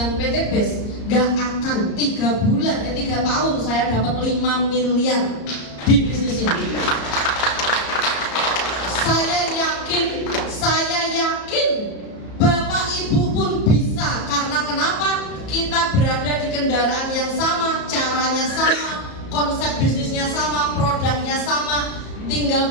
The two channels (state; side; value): late; right; 34 ms